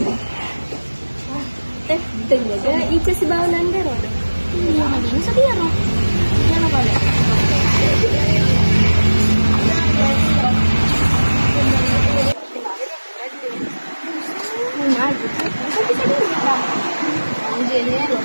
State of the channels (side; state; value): both; inverted; correlation -1.00